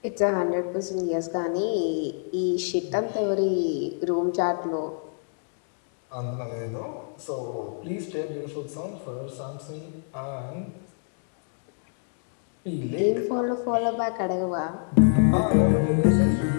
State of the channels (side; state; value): right; silent; digital silence